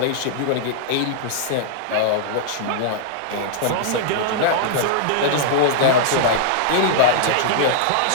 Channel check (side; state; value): both; different; correlation -0.02